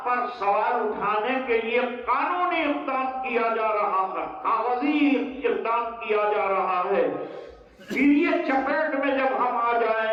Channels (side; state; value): both; identical; correlation 1.00